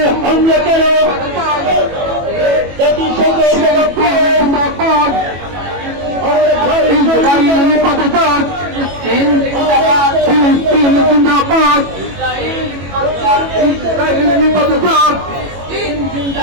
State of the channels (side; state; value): left; late; 21 ms